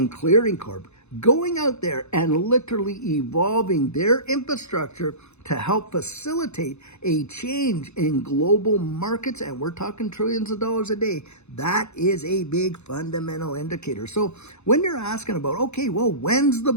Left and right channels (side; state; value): right; late; 0.81 ms